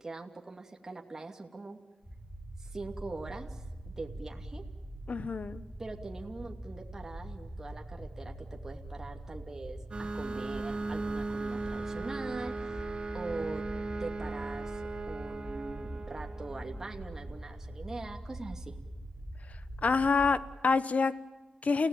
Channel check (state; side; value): normal; both; correlation 0.88